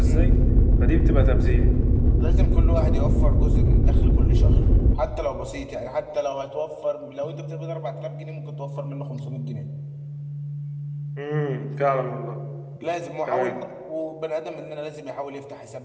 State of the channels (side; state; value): both; identical; correlation 1.00